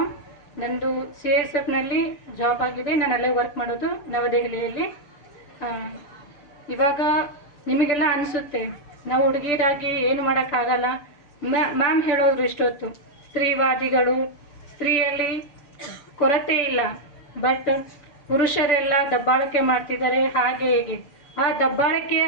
ನಂದು CISFನಲ್ಲಿ ಜಾಬ್ ಆಗಿದೆ, ನಾನು ಅಲ್ಲೇ ವರ್ಕ್ ಮಾಡೋದು ನವದೆಹಲಿಯಲ್ಲಿ. ಇವಾಗ ನಿಮಗೆಲ್ಲ ಅನಿಸುತ್ತೆ ನಾವು ಹುಡುಗಿಯರಾಗಿ ಏನು ಮಾಡೋಕ್ಕಾಗಲ್ಲ. ಮ್ಯಾಮ್ ಹೇಳೋರು ಇಷ್ಟೊತ್ತು ಸ್ತ್ರೀವಾದಿಗಳು, ಸ್ತ್ರೀಯಲ್ಲಿ ಕೊರತೆ ಇಲ್ಲ, ಬಟ್ ಪುರುಷರೆಲ್ಲ ದಬ್ಬಾಳಿಕೆ ಮಾಡ್ತಿದ್ದಾರೆ ಹಾಗೆ ಹೀಗೆ. ಆ ದಬ್ಬಾಳಿಕೆ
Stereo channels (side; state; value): right; late; 6.8 ms